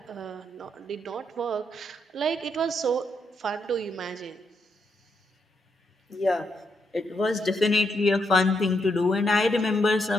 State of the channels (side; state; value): both; normal; correlation 0.78